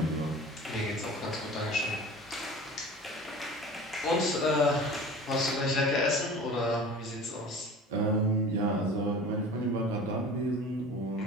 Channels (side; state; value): both; normal; correlation 0.40